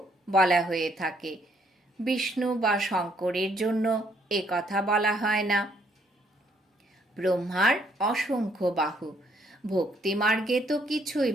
বলা হয়ে থাকে। বিষ্ণু বা শঙ্করের জন্য এ কথা বলা হয় না। ব্রহ্মার অসংখ্য বাহু। ভক্তিমার্গে তো কিছুই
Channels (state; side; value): normal; both; correlation 0.69